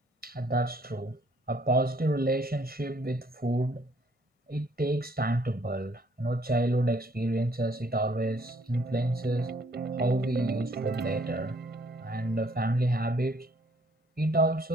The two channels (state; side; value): normal; both; correlation 0.64